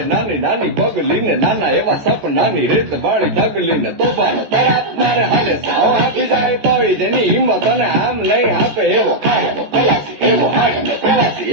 નાની નાની પગલીને નાના એવા સપનાની રેત વાળી ઢગલીને તોફાનો તરાપ મારે હાલે સાવ આપી જાય તળી જેની હિંમત અને આમ નહીં આપે એવો ખાડો ખલાસી એવો હાડનો પ્રવાસી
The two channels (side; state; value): left; late; 14 ms